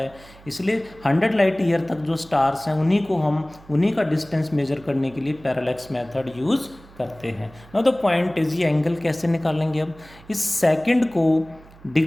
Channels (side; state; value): right; noise; hum, 23 dB below the sound